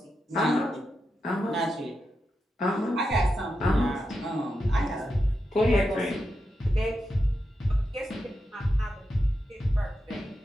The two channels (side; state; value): both; normal; correlation 0.88